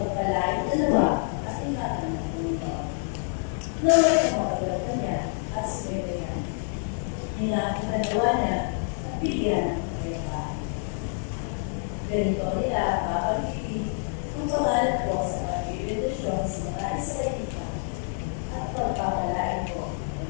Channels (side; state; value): right; silent; 60 dB below the other